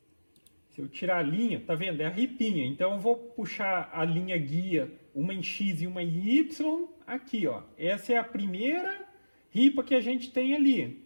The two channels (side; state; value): both; inverted; correlation -1.00